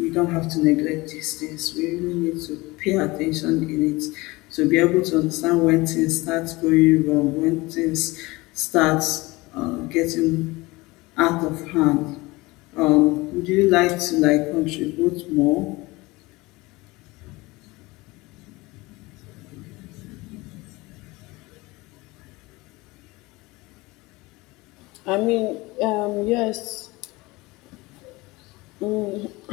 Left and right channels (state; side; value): quieter; right; 22.1 dB